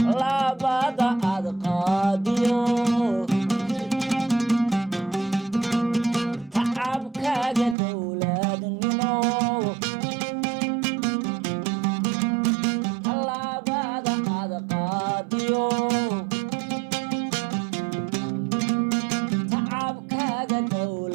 labada ad qaadiyo tacabkaaga dowladnimo labada ad qaadiyo tacabkaaga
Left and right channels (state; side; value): drops out; left; at 7.8 s